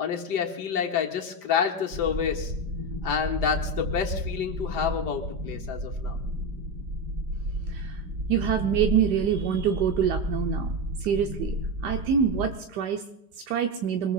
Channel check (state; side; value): late; left; 5.0 ms